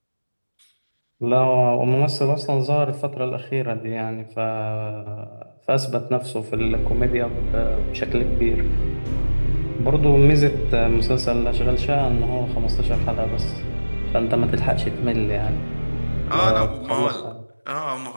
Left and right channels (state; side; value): inverted; both; correlation -1.00